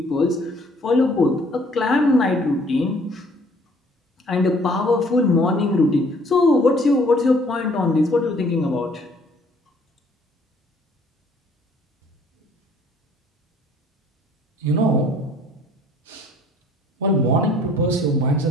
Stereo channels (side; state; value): both; normal; correlation 0.58